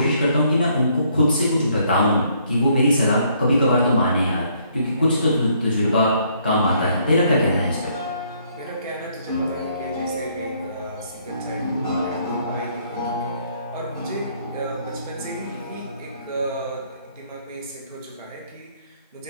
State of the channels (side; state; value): both; inverted; correlation -0.67